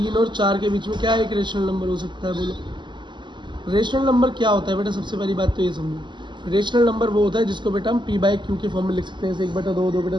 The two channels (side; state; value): left; late; 0.22 ms